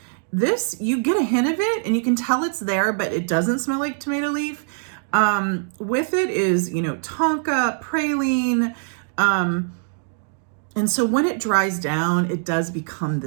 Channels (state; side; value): silent; left; digital silence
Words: This, you get a hint of it and you can tell it's there, but it doesn't smell like tomato leaf. With it is, you know, tonka, praline, and so when it dries down, it does become